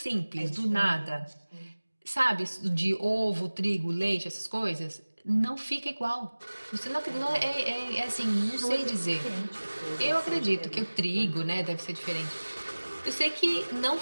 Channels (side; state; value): both; inverted; correlation -1.00